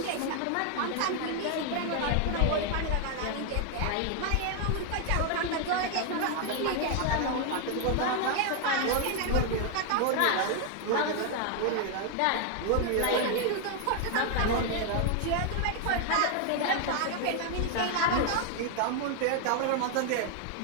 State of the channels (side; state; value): both; different; correlation 0.00